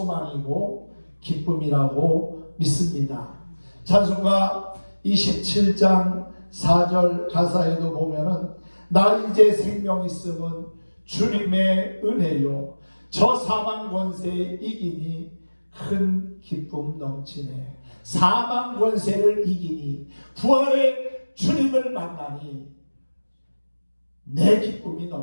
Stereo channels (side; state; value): both; inverted; correlation -1.00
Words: 기쁨이라고 믿습니다. 찬송가 27장 4절 가사에도 보면은 나 이제 생명 있음은 주님의 은혜요 저 사망 권세에 이기니 큰 기쁨 넘치네. 사망 권세를 이기니 부활의 주님을 만나니 내 기쁨이